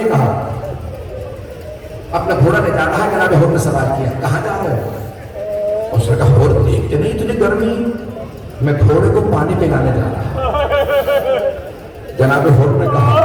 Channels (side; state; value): both; identical; correlation 1.00